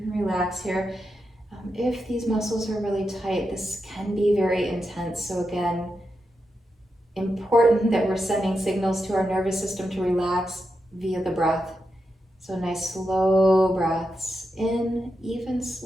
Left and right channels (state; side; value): normal; both; correlation 0.87